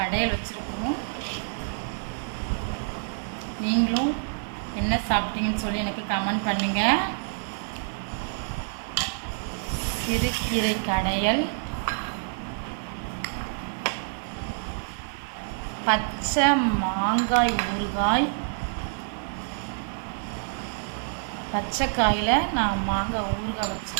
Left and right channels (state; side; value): silent; left; digital silence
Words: வச்சுருக்கோம். நீங்களும் என்ன சாப்பிட்டீங்கன்னு சொல்லி எனக்கு கமெண்ட் பண்ணுங்கள். சிறுகீரை கடையல், பச்சை மாங்காய் ஊறுகாய். பச்சை காயில் நான் மாங்காய் ஊறுகாய்